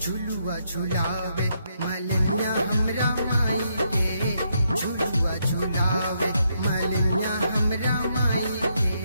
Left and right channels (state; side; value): inverted; both; correlation -0.77